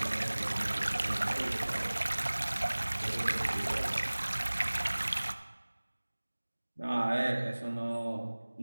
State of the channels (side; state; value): both; inverted; correlation -1.00